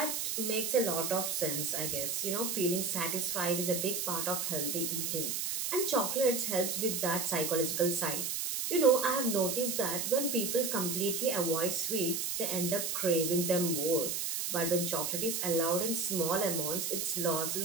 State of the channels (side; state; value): right; noise; hiss, 1 dB below the sound